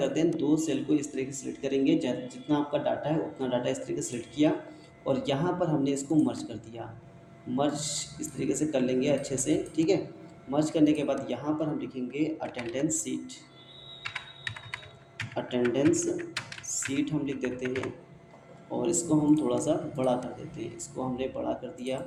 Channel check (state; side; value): identical; both; correlation 1.00